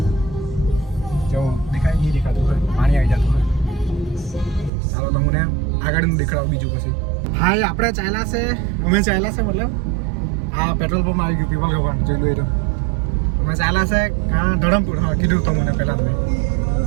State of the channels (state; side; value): drops out; left; at 4.7 s